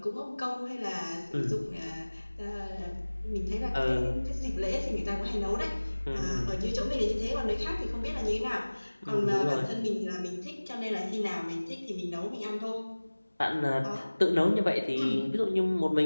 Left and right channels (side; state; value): both; inverted; correlation -1.00